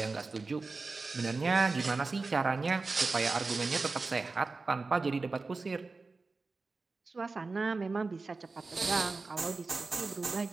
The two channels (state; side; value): quieter; left; 3.9 dB